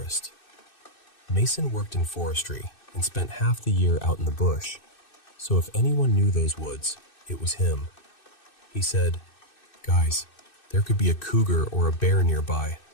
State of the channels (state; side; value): late; right; 2.6 ms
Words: Mason worked in forestry and spent half the year out in the bush, so if anyone knew those woods, it was him. He said, "Guys, there could be a cougar or a bear nearby.